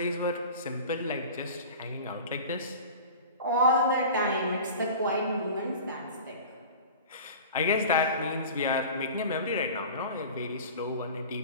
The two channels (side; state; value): both; inverted; correlation -0.37